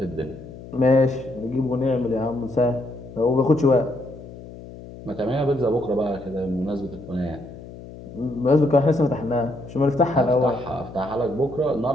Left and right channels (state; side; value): noise; left; hum, 15 dB below the sound